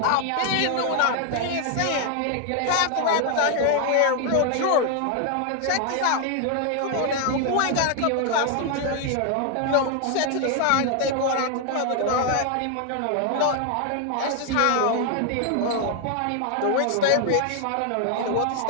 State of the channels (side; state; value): both; different; correlation 0.00